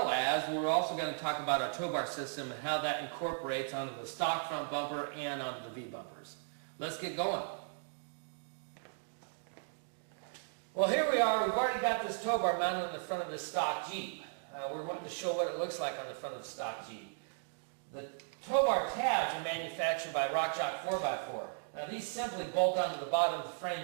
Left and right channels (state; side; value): silent; left; digital silence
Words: as, we're also going to talk about our tow bar system and how that incorporates onto the stock front bumper and onto the V-bumpers. Let's get going. Well, here we are. We've already got this tow bar mounted on the front of this stock Jeep. We're wanting to show what it looks like on the front of the stock Jeep. The tow bar tabs are manufactured by RockChalk 4x4. Now these simply bolt onto the bottom of the